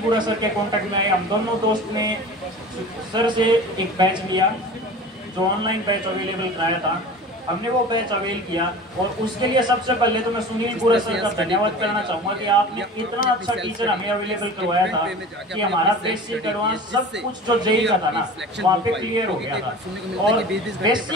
बुरा सर के कांटेक्ट में आए। हम दोनों दोस्त ने सर से एक बैच लिया, जो ऑनलाइन बैच अवेलेबल कराया था, हमने वो बैच अवेल किया। और उसके लिए सबसे पहले तो मैं सुनील बुरा सर का धन्यवाद करना चाहूँगा कि आपने इतना अच्छा टीचर हमें अवेलेबल करवाया था कि हमारा बेसिक एडवांस सब कुछ जो जेई का था ना, वहाँ पे क्लियर हो गया था। और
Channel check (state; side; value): normal; both; correlation 0.37